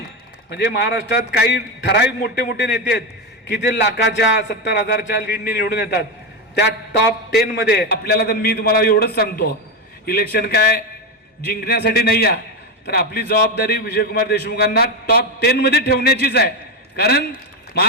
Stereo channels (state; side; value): normal; both; correlation 0.11